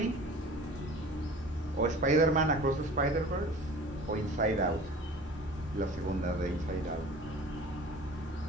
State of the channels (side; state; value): both; normal; correlation 0.42